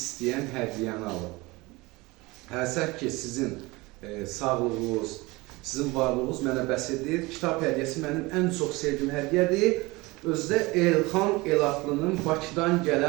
hədiyyəni alıb. Həsək ki, sizin sağlığınız, sizin varlığınız mənə bəs edir. Kitab hədiyyəsi mənim ən çox sevdiyim hədiyyədir. Özdə Elxan Elatlı'nın Bakıdan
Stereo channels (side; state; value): left; quieter; 22.8 dB